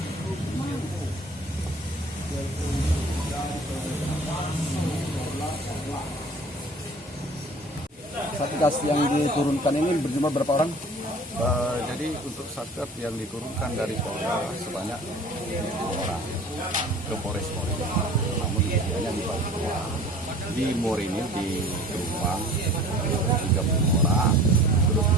Satgas yang diturunkan ini berjumlah berapa orang? Jadi untuk satgas yang diturunkan dari Polda sebanyak 2 orang ke Polres Morini. Namun hanya dibagi di Morini di Jombang 30 orang, terus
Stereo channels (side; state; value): both; normal; correlation 0.46